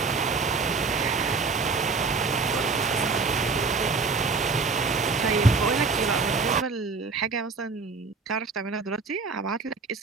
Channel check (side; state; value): left; quieter; 4.4 dB